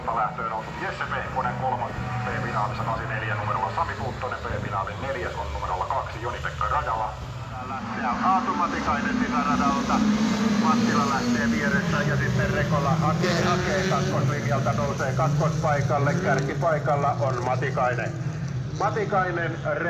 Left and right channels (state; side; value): identical; both; correlation 1.00